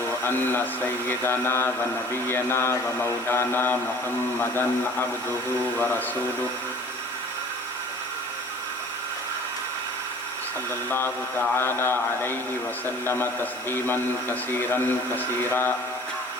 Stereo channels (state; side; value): normal; both; correlation 0.47